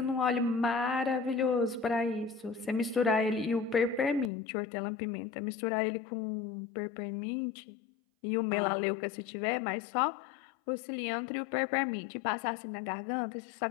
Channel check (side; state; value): right; drops out; at 4.3 s